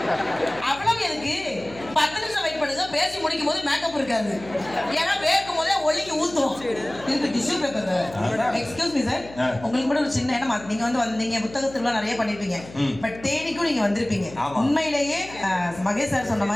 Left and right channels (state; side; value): noise; left; hum, 17 dB below the sound